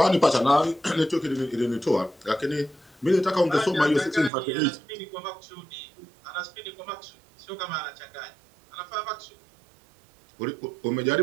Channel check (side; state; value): left; drops out; at 4.3 s